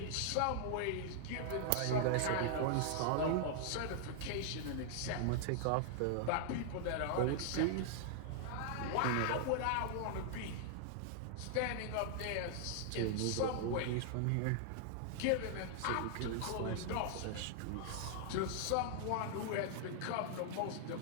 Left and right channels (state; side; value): different; both; correlation -0.01